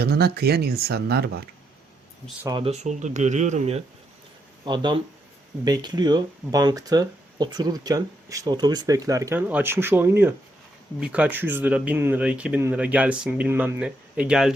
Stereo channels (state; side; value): normal; both; correlation 0.78